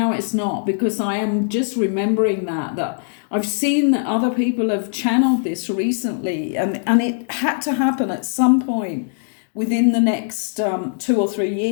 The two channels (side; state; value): right; silent; digital silence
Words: it's not, because I am just remembering that I've seen that other people have channeled this recently, and it had to happen at some point within the next 2 or 3